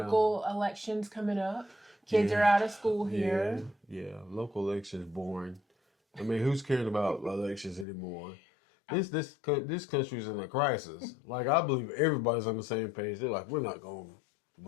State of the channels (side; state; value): right; drops out; at 7.9 s